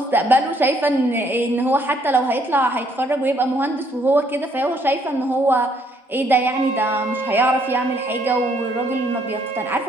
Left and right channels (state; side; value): normal; both; correlation 0.68